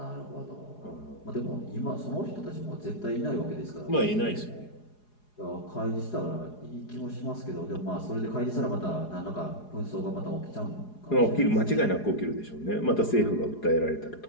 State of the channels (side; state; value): right; late; 4.8 ms